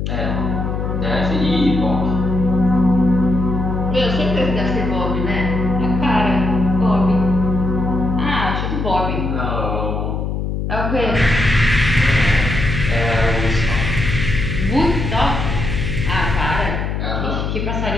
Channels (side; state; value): left; noise; hum, 2 dB below the sound